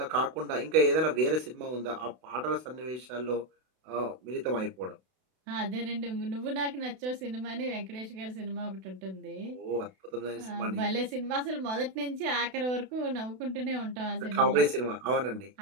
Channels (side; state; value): left; late; 32 ms